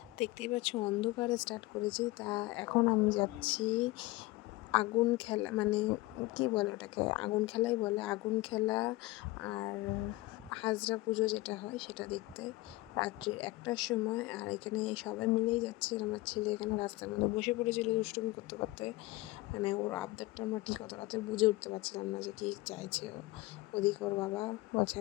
দেখতেই পাচ্ছ অন্ধকারে স্টার্ট করেছি। তা এখন আমি যাচ্ছি আগুন খেলা, মানে কি বলে ওটাকে, আগুন খেলাই বলে, আগুন খেলা আর হাজরা পুজো যেটা হয় সেটা দেখতে রাত্রি 1টার সময়। আর এখানে সবাই মিলেই যাচ্ছে। আমার ছেলে এখানে রাস্তার মধ্যে বসে পড়েছিল দুষ্টুমি করতে করতে, মানে ওর আবদারটা আমরা ঠিক অত রাতে বুঝে উঠতে পারছিলাম না যে কী চাইছে ও। ওদিকে ওর বাবা বলছে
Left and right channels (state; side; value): quieter; right; 20.3 dB